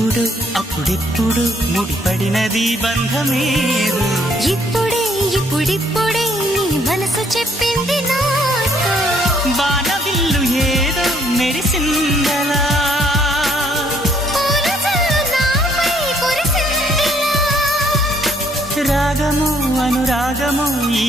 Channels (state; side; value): normal; both; correlation 0.66